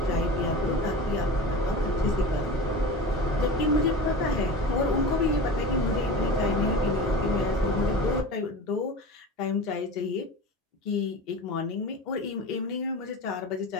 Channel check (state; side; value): normal; both; correlation 0.31